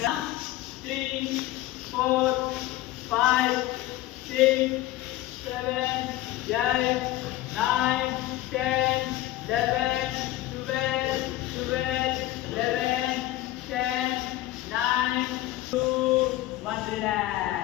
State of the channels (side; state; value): right; quieter; 15.5 dB